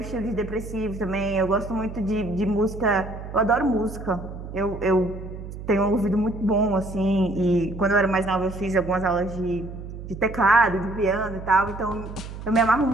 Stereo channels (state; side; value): noise; right; hum, 11 dB below the sound